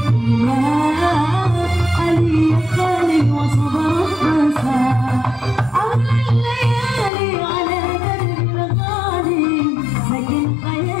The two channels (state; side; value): drops out; right; at 7.1 s